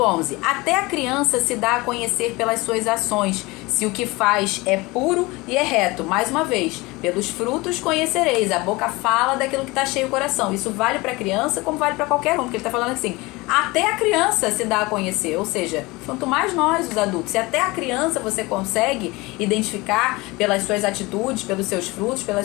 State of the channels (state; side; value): quieter; right; 22.9 dB